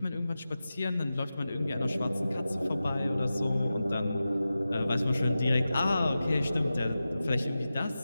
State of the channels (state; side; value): inverted; both; correlation -0.93